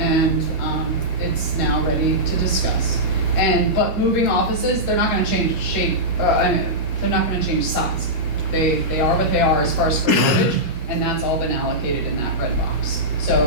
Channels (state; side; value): late; left; 2.1 ms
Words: it's now ready to discuss. But moving offices, they're not gonna change shape, they're not gonna change size. They are what they are as far as square footage, and that's all been allocated in that red box.